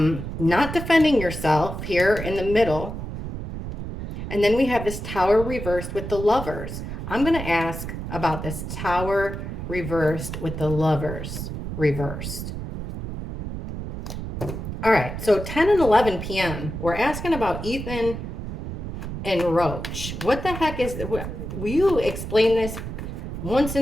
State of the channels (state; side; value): noise; right; rumble, 7 dB below the sound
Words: defending yourself here in the middle. And then we have this Tower reversed with the Lovers. I'm going to ask about this Tower reversed with the Lovers reversed. All right, so 10 and 11 p.m. We're asking about Ethan and Roach. What the heck is, will you explain this once